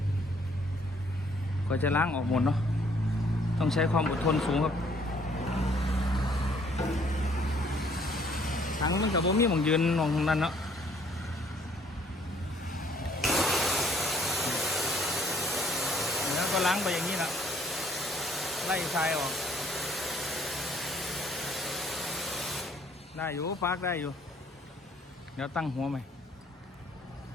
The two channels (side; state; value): both; normal; correlation 0.62